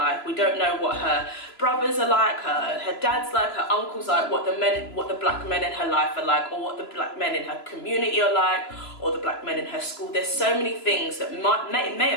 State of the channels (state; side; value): late; right; 2.9 ms